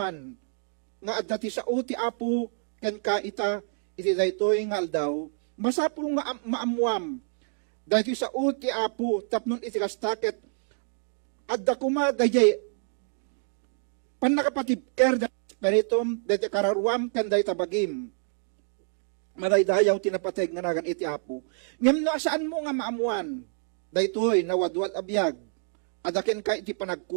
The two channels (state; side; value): silent; left; digital silence